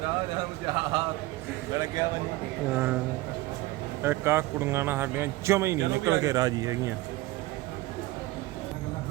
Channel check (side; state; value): left; quieter; 18.8 dB